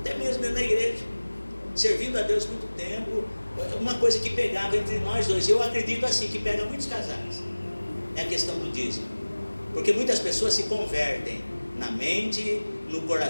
mesmo dentro da igreja, servindo a Deus muito tempo, uma coisa que pegava entre nós dois, eu acredito assim, que pega muitos casais, é a questão do dízimo. Porque muitas pessoas se convertem na mente, no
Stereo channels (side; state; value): both; inverted; correlation -1.00